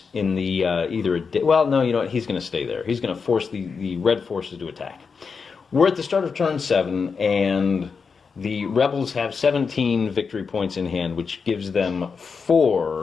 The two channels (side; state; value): right; quieter; 5.4 dB